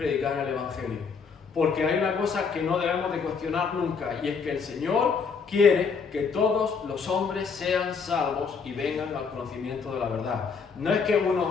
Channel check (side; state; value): right; quieter; 5.6 dB